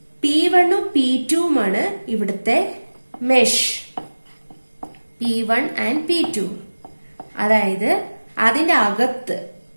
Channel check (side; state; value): both; inverted; correlation -1.00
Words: P1ഉം P2ഉമാണ് ഇവിടുത്തെ മെഷ്, P1 and P2. അതായത് അതിന്റെ അകത്ത്,